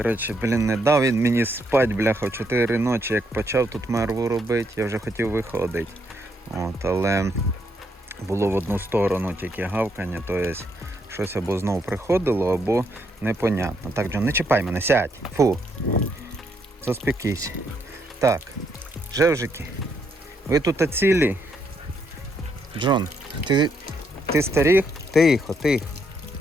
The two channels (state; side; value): normal; both; correlation 0.75